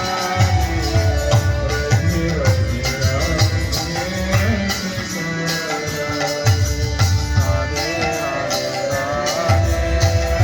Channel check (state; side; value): identical; both; correlation 1.00